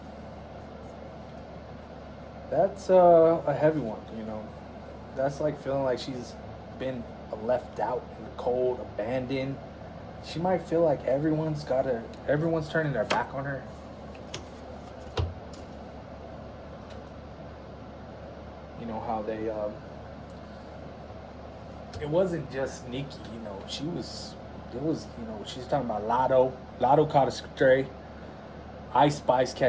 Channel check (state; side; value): identical; both; correlation 1.00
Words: That's a heavy one, you know. That's like feeling like she's been left out in the cold, abandoned. She might feel like everyone's turning their back on her. You know how they it wasn't just Nicki, you know, you know, she's talking about Lotto. Lotto caught a stray. Ice Spice